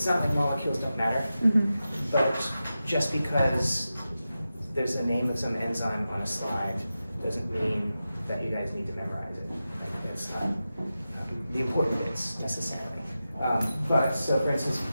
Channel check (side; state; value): both; inverted; correlation -0.92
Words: not like molecules don't matter, but just because there's the name of some enzyme on a slide doesn't mean that you guys need to memorize it. Like, that's not the important bits necessarily. But so for instance,